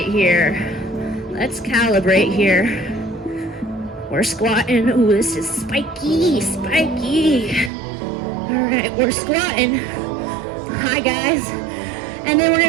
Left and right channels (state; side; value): drops out; left; at 7.7 s